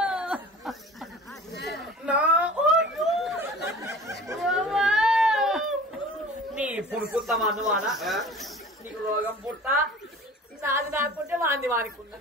నీ పుడుకుంటామా నువ్వానా నీకు రోగం పుట్ట నాది నాకుంటే వాంది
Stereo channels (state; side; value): normal; both; correlation 0.41